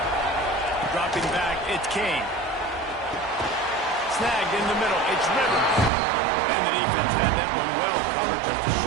Dropping back, it's King. Snagged in the middle, it's Rivers. And the defense had that one well covered, just a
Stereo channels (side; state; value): left; drops out; at 5.9 s